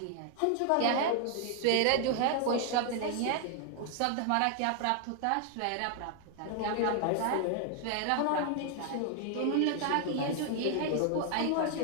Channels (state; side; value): different; both; correlation 0.00